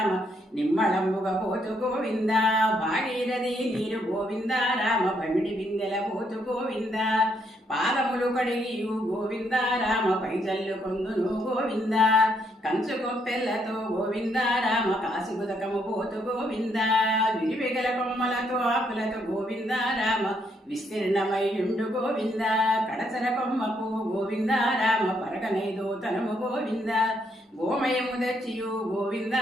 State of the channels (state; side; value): normal; both; correlation 0.74